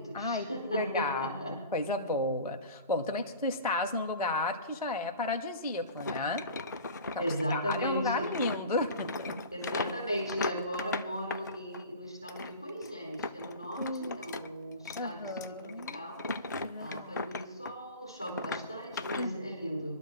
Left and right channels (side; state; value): both; inverted; correlation -0.37